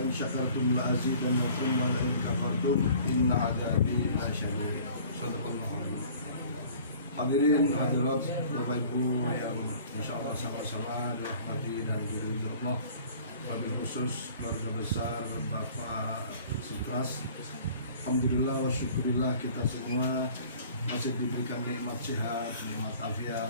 in syakartum la azidannakum wa la in kafartum inna 'adzabi lasyadid. Shadaqallahu alazim. Hadirin hadirat Bapak Ibu yang insyaallah sama-sama dirahmati dan diridhoi Allah. Wabil khusus keluarga besar Bapak Sutras, alhamdulillah wa syukurillah kita semua masih diberikan nikmat sehat, nikmat afiat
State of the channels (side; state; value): both; inverted; correlation -0.49